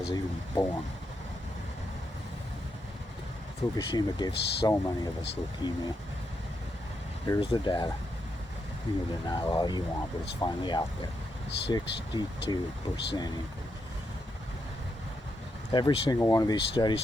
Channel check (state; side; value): normal; both; correlation 0.82